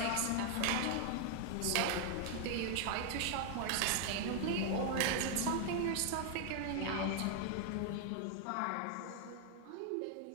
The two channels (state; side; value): different; both; correlation 0.00